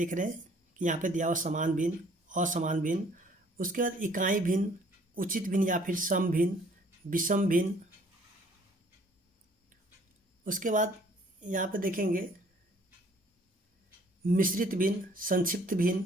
रहे हैं कि यहाँ पे दिया हुआ समान भिन्न, असमान भिन्न, उसके बाद इकाई भिन्न, उचित भिन्न या फिर सम भिन्न, विषम भिन्न। उसके बाद यहाँ पे देखेंगे मिश्रित भिन्न, संक्षिप्त भिन्न,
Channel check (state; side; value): normal; both; correlation 0.58